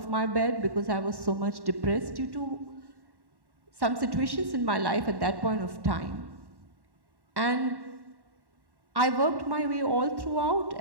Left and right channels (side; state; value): left; late; 1.1 ms